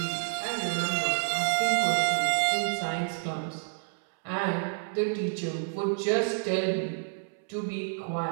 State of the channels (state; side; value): silent; left; 59 dB below the other